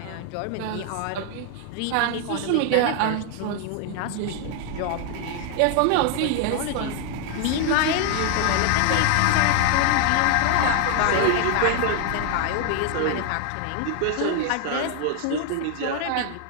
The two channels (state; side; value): different; both; correlation 0.00